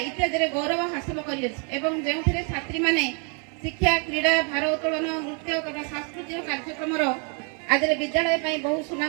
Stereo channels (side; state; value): left; quieter; 37.7 dB